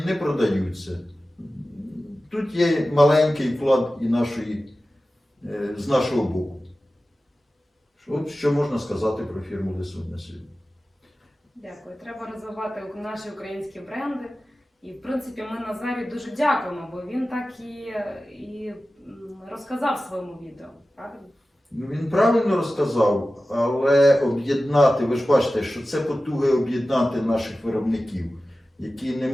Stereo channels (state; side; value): normal; both; correlation 0.95